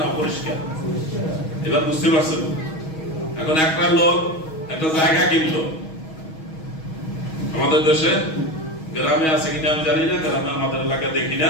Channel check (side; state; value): right; late; 6.3 ms